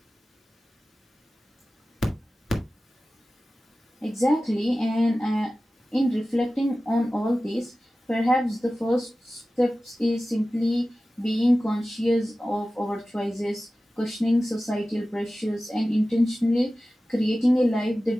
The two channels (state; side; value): normal; both; correlation 0.96